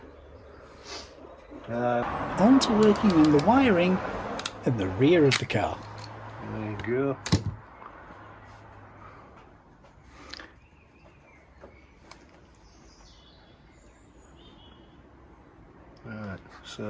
On to working on the wiring at the rear of the car. There you go. Right,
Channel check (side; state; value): both; identical; correlation 1.00